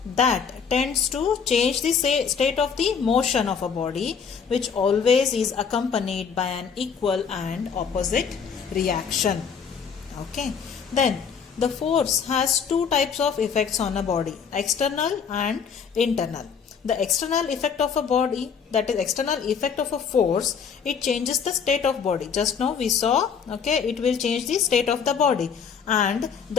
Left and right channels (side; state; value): right; quieter; 6.5 dB